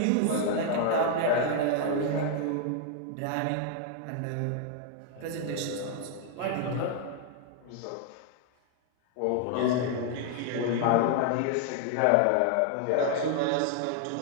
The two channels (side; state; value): both; different; correlation 0.00